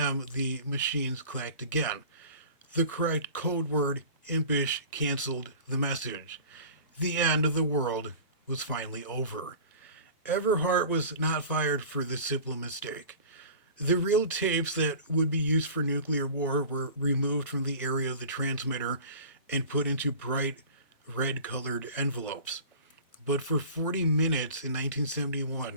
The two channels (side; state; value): both; inverted; correlation -0.40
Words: the machines clacked again. The correct code word, impish, canceled the message. The end of the world was finally over. Everhart was not fired for this simple mistake. The real tapes that would be used for nuclear war were removed from the area of the transmitter and put into bright red colored envelopes. But for 40 minutes in